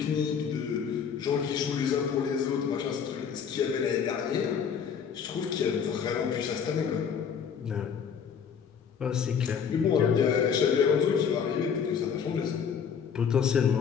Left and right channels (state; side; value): quieter; right; 7.1 dB